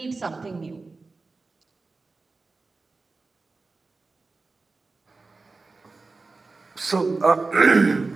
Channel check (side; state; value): left; quieter; 3.8 dB